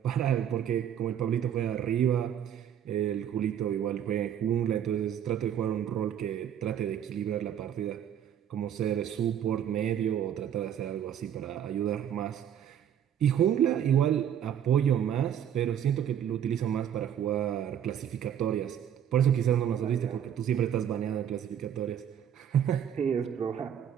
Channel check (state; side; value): quieter; left; 9.5 dB